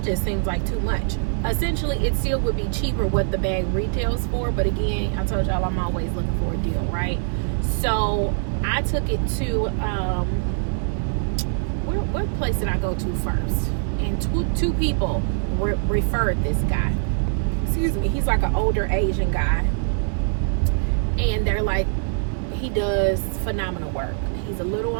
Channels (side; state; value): left; silent; 63 dB below the other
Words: just seems like too much. Essentially, it still would be cheaper what the bag retails for, but again, I told y'all I'm always looking for a deal, right? So I took it to what place did I go to first? And two people referred this guy. Excuse me, he's like an older Asian guy, and they're like, he does phenomenal work. He's a little